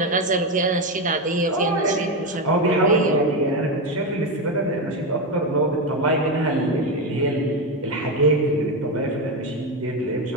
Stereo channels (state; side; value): normal; both; correlation 0.11